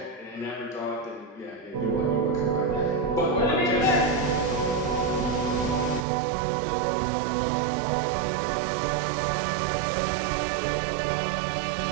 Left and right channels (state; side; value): drops out; left; at 6.1 s